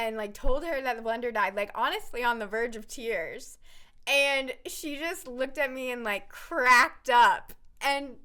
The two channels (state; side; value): identical; both; correlation 1.00